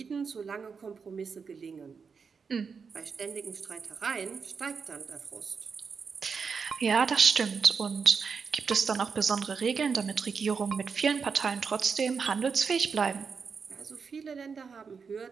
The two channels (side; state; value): left; quieter; 5.7 dB